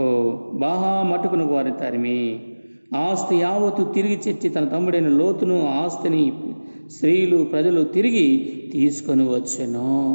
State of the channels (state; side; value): inverted; both; correlation -1.00